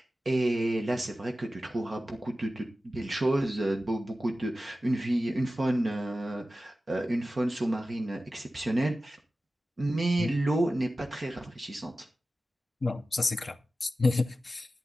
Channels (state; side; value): normal; both; correlation 0.94